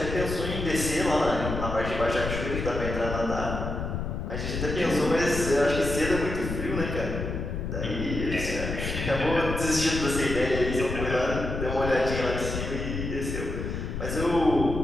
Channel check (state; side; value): noise; left; rumble, 4 dB below the sound